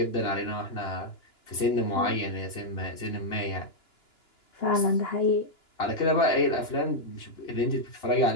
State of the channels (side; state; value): right; late; 2.9 ms